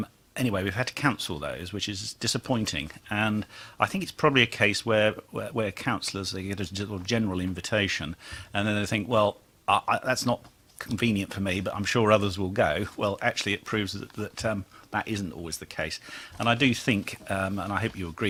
Anyway, we've had to cancel those, which is disappointing. And I think it's probably a case where councillors, they get a general invitation, and then they think, well, that's not convenient for me, but I'm sure others will go. Well, actually, it proves that that isn't always the case. And I do think, and I hope you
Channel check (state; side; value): identical; both; correlation 1.00